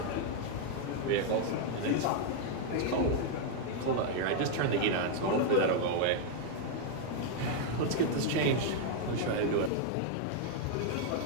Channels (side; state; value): both; different; correlation 0.00